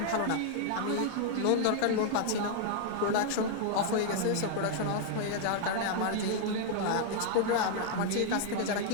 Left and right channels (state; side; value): different; both; correlation 0.00